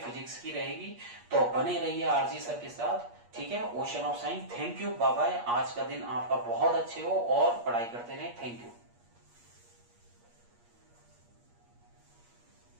की रहेगी, तो बने रहिए RG सर के साथ। ठीक है। Ocean of science. Thank you, bye bye. आज का दिन आपका बहुत अच्छे हो और पढ़ाई करते रहे। Thank you.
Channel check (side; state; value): left; late; 8.4 ms